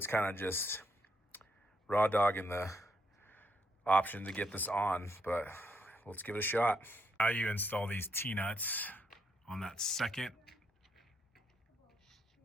kind of just raw dogging the option to get this on, but let's give it a shot. How you install these T-nuts on that second.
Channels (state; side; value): normal; both; correlation 0.76